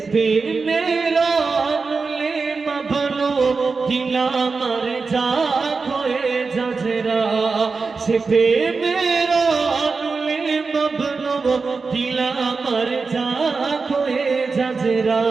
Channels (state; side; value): quieter; left; 4.5 dB